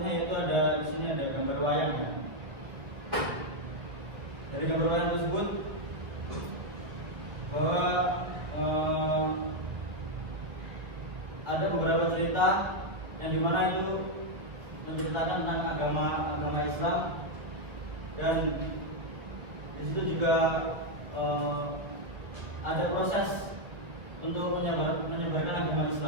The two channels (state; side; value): late; left; 1.9 ms